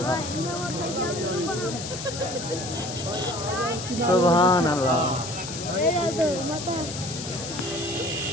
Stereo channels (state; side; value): noise; left; hiss, 8 dB below the sound